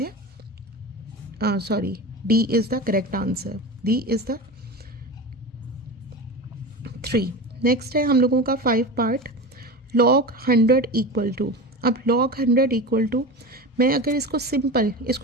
sorry, D is the correct answer. D is the 3। Next है हम लोगों का 5 पार्ट, log 100 = अब log 100 = मैं अगर इसको सिंपल,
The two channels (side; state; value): both; normal; correlation 0.27